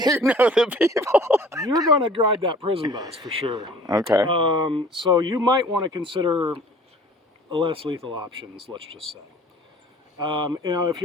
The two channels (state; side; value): normal; both; correlation 0.50